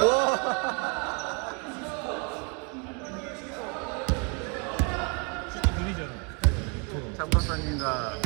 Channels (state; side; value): quieter; left; 33.1 dB